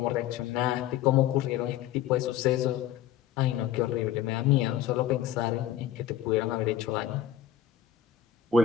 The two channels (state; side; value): quieter; right; 11.1 dB